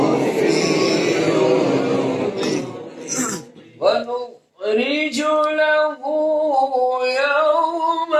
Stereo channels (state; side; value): identical; both; correlation 1.00